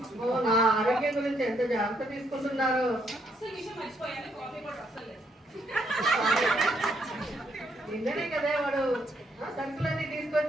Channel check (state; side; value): normal; both; correlation 0.73